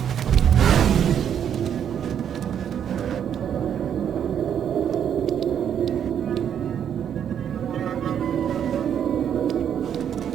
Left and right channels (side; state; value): left; quieter; 8.9 dB